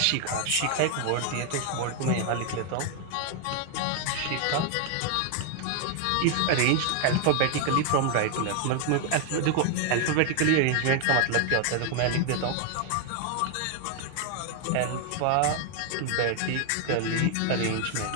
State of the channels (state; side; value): different; both; correlation 0.00